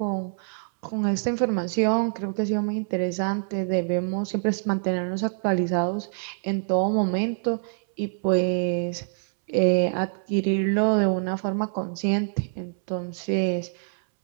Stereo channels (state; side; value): silent; left; 61 dB below the other